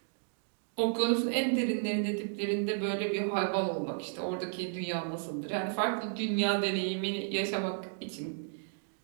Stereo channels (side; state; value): left; silent; digital silence